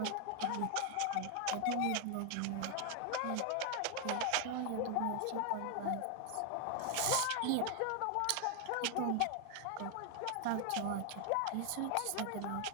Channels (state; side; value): different; both; correlation 0.00